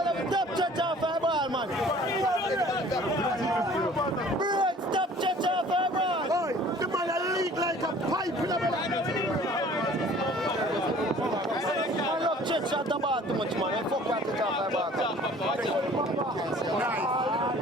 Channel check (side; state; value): both; normal; correlation 0.50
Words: Stop church off our ball, man. Bro, stop church off our ball. Oi, the man a leak like a pipe in the middle. I love church at the bar too much, man. I fuck that church off our ball.